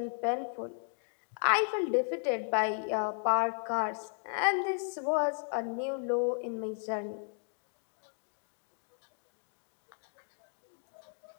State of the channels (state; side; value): silent; right; digital silence